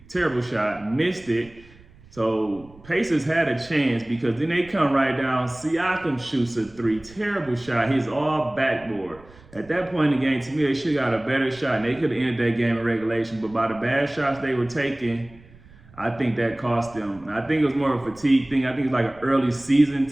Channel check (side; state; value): right; noise; rumble, 24 dB below the sound